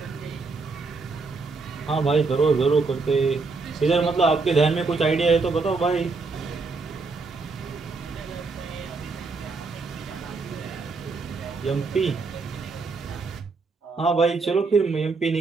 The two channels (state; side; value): quieter; left; 4.1 dB